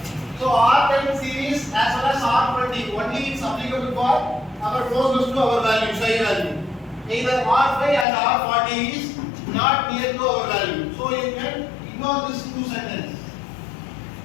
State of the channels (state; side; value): drops out; right; at 8.1 s